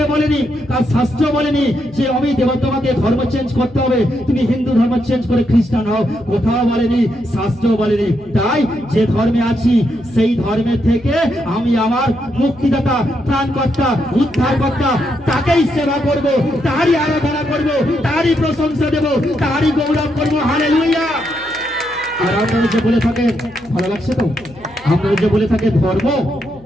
বলেনি, তার শাস্ত্র বলেনি যে আমি তোমাকে ধর্ম চেঞ্জ করতে হবে, তুমি হিন্দু ধর্ম চেঞ্জ করে খ্রিস্টান হও, কোথাও বলেনি, শাস্ত্র বলেনি। তাই যে ধর্মে আছি সেই ধর্মের থেকে আমি আমার মুক্তিদাতা, ত্রাণকর্তা, উদ্ধারকর্তা, তাকেই সেবা করব, তারই আরাধনা করব, তারই প্রশংসা দেব, তারই গৌরব করব। হালেলুয়া। আর আপনারা যে বলে থাকেন, ভালো লাগছে তো? আপনারা যে বলে থাকে ধর্ম,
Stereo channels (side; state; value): left; noise; hum, 24 dB below the sound